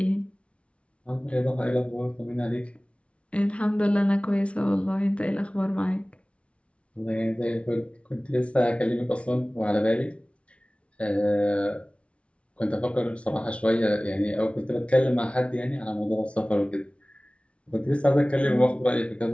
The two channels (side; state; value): right; late; 0.061 ms